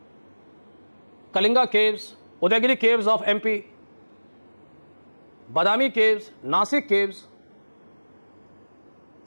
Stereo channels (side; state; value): both; inverted; correlation -1.00